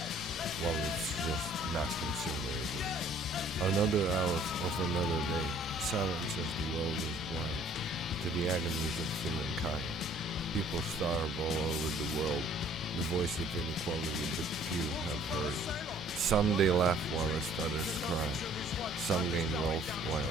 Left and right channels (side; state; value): both; normal; correlation 0.57